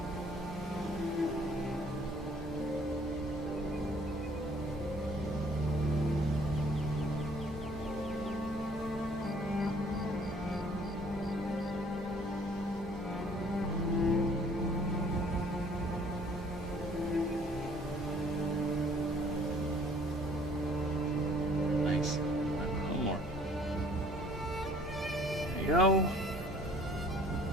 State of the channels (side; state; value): both; normal; correlation 0.56